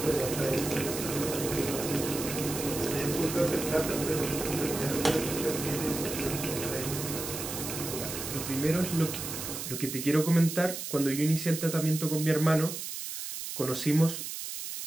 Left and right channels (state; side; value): noise; right; hiss, 6 dB below the sound